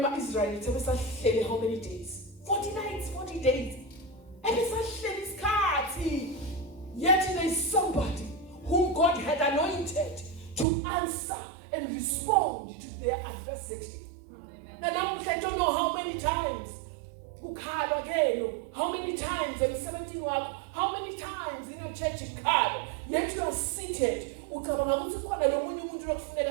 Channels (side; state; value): left; drops out; at 10.7 s